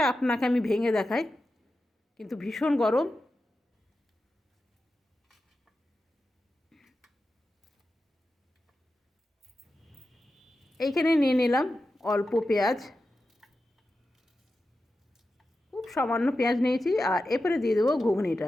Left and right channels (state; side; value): normal; both; correlation 0.91